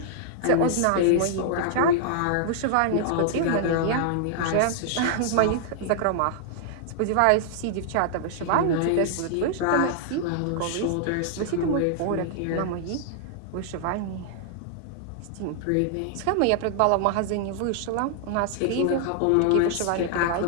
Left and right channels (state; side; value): different; both; correlation -0.01